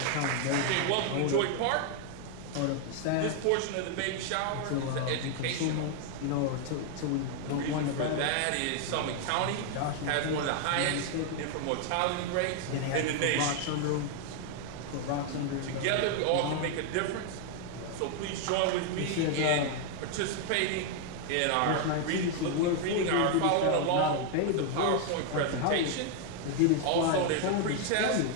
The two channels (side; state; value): both; different; correlation 0.00